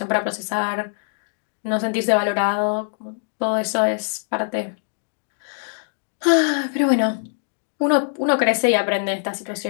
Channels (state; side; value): silent; right; digital silence